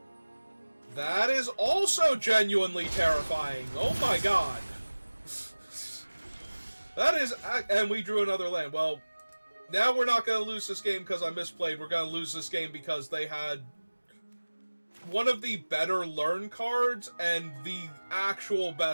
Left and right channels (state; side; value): inverted; both; correlation -1.00